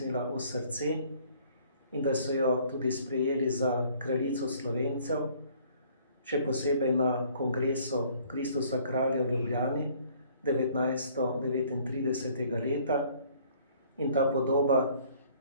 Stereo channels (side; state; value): both; inverted; correlation -0.58